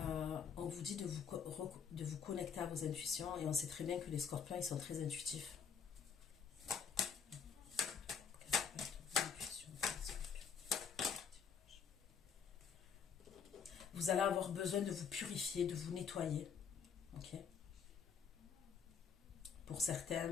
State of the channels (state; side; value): quieter; right; 6.7 dB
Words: On vous dit de vous connecter à vos intuitions et on sait très bien que les scorpions, ils sont très intuitifs. Vous allez avoir besoin de vous purifier, de vous nettoyer. Ok. Pour certains,